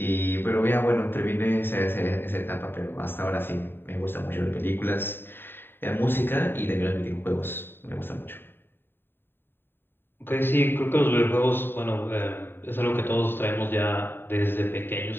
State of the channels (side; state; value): right; late; 0.10 ms